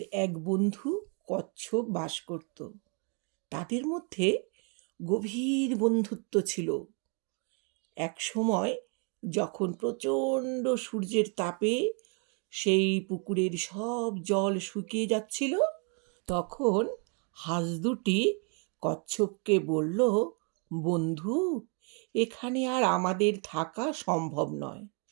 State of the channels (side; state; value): left; quieter; 37.7 dB